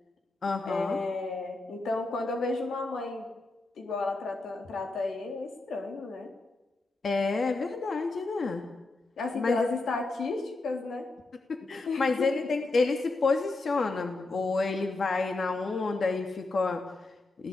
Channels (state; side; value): quieter; right; 3.3 dB